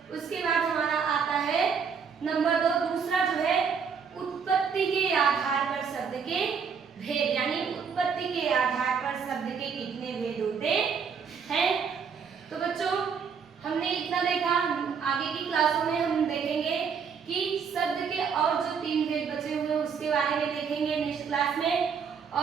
उसके बाद हमारा आता है नंबर 2, दूसरा जो है उत्पत्ति के आधार पर शब्द के भेद, यानी उत्पत्ति के आधार पर शब्द के कितने भेद होते हैं। तो बच्चों हमने इतना देखा, आगे की क्लासों में हम देखेंगे कि शब्द के और जो 3 भेद बचे हुए उसके बारे में देखेंगे नेक्स्ट क्लास में।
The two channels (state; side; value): quieter; left; 6.4 dB